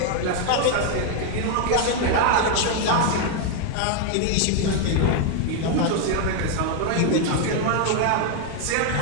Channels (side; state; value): both; different; correlation 0.00